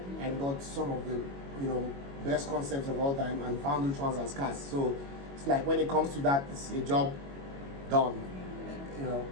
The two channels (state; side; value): late; left; 22 ms